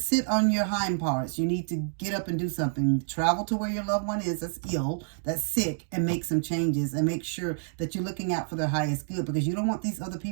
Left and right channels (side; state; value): left; silent; digital silence